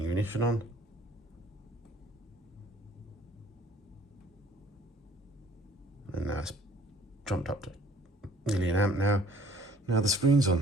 ignition on. And now it's jumped up to nearly an amp now. Now the screen's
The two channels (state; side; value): normal; both; correlation 0.55